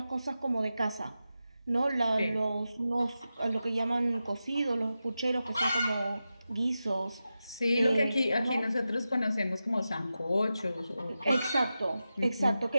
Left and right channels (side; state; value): both; inverted; correlation -0.92